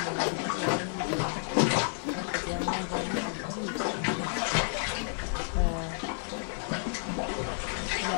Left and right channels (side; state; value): right; silent; 57 dB below the other